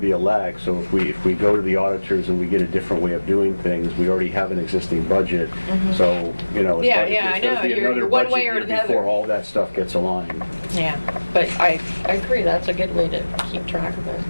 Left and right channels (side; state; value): both; inverted; correlation -1.00